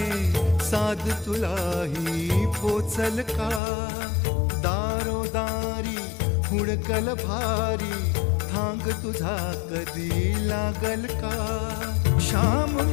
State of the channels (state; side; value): drops out; right; at 3.6 s